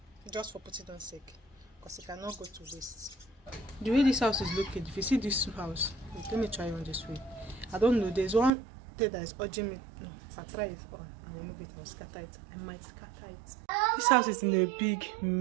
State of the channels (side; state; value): left; drops out; at 8.5 s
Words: Just for putting on sake, because it cannot go to waste. The way this house is located, if you see this house, let me try on this way. I don't know, there's one thing that is urging me. No, if I try it on and remove it, I'll scatter it. I might scatter it. This house is in a big